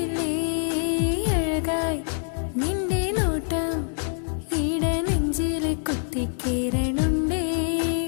അഴകായി നിന്റെ നോട്ടം ഇട നെഞ്ചിൽ കുത്തിക്കേറണുണ്ടേ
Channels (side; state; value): right; silent; digital silence